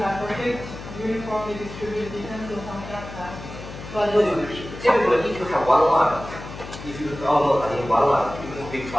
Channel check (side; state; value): left; noise; hum, 12 dB below the sound